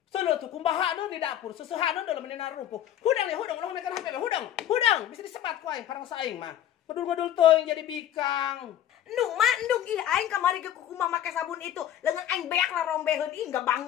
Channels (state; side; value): quieter; right; 11.2 dB